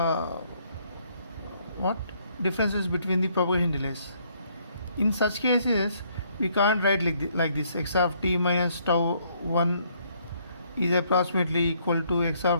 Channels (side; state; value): both; inverted; correlation -0.68